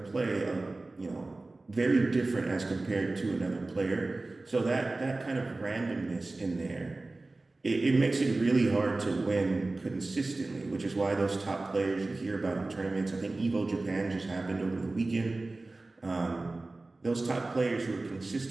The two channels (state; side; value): quieter; left; 3.2 dB